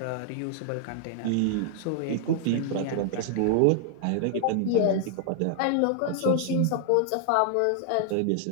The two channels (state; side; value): different; both; correlation 0.00